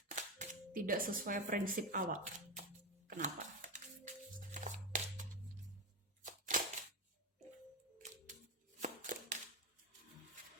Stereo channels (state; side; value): normal; both; correlation 0.14